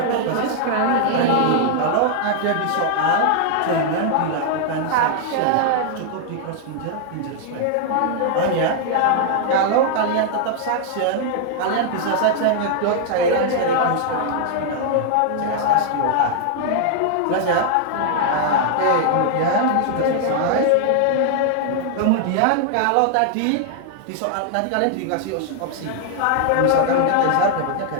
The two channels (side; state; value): both; different; correlation 0.00